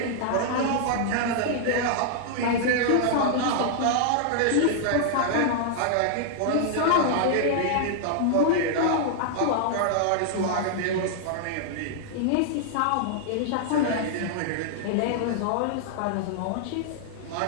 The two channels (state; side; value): different; both; correlation -0.01